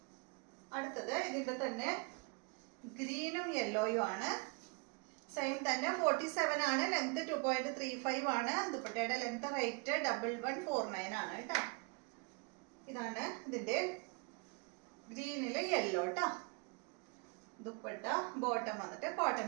അടുത്തത് ഇതിന്റെ തന്നെ ഗ്രീനും യെല്ലോയും ആണ്. സെയിം തന്നെ 47 ആണ്. ലെങ്ത് 2.35 ആണ്. ദുപ്പട്ടയുടെ ലെങ്ത് റേറ്റ് 1149 ആണ് കേട്ടോ. ഇതാണ് ഇതിന്റെ ഗ്രീനില് യെല്ലോ കേട്ടോ. ദുപ്പട്ട ബോട്ടം വന്നിട്ട് കോട്ടൺ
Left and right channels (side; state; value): left; quieter; 31.4 dB